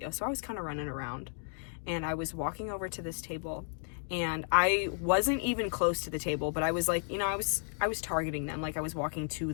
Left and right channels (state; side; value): silent; right; digital silence